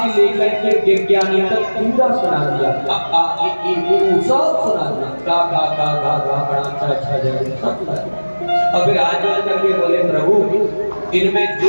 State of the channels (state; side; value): inverted; both; correlation -1.00